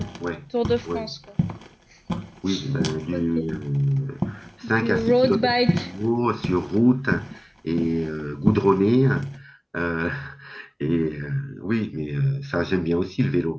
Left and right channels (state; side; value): identical; both; correlation 1.00